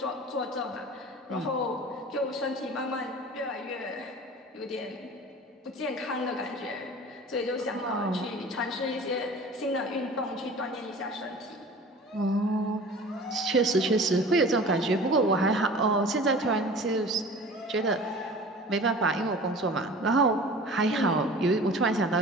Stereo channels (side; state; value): both; normal; correlation 0.41